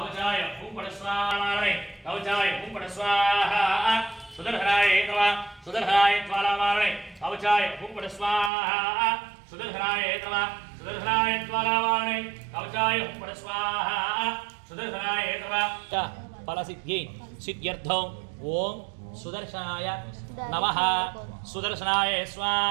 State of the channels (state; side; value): drops out; left; at 8.5 s